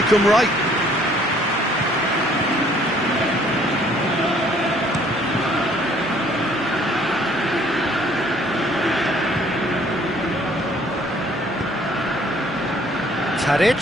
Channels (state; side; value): normal; both; correlation 0.60